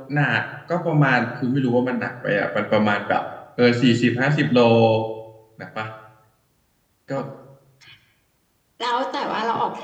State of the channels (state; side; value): identical; both; correlation 1.00